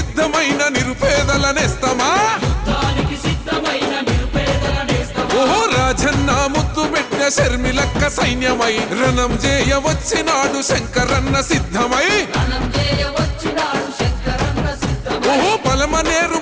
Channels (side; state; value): both; identical; correlation 1.00